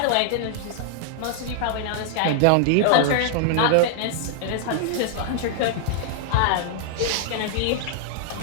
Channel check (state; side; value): different; both; correlation -0.01